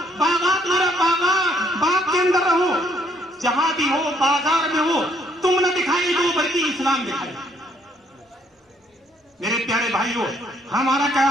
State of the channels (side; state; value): both; normal; correlation 0.67